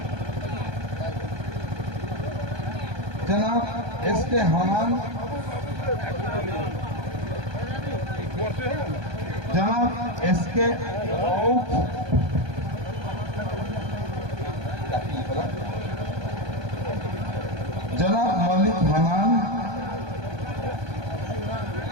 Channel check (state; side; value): late; left; 1.2 ms